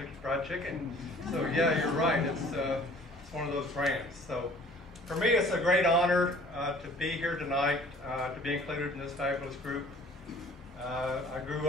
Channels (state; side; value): normal; both; correlation 0.51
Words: Fried Chicken. So yeah, you're right, it's one of those brands. So for me, it's a great honor to be here tonight, to be included in this fabulous group. I grew